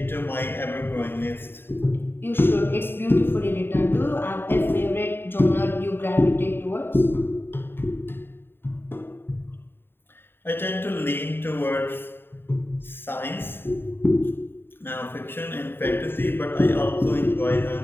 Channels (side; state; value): right; late; 0.10 ms